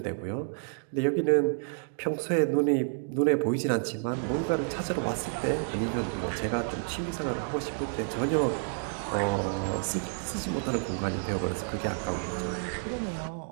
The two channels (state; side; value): silent; left; digital silence